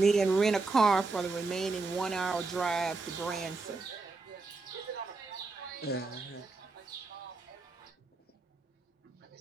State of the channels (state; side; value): quieter; left; 3.8 dB